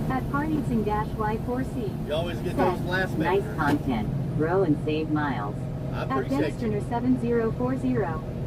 At Parneatsing-Y4C You always get those last Nice minutes. content. Grow and save miles. I at appreciate you.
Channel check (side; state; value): both; identical; correlation 1.00